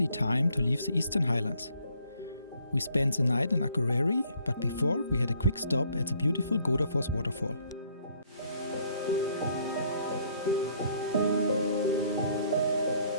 time to leave the Eastern Highlands. We spent the night in Akureyri, but before we had a quick stop at the beautiful Godafoss waterfall.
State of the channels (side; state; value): both; inverted; correlation -0.64